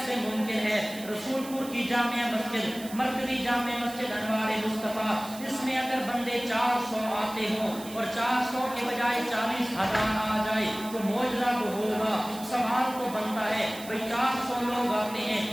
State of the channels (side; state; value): right; noise; hiss, 15 dB below the sound